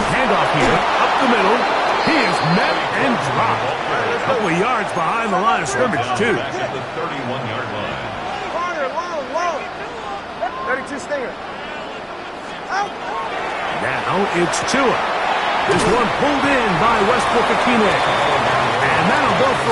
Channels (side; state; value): both; identical; correlation 1.00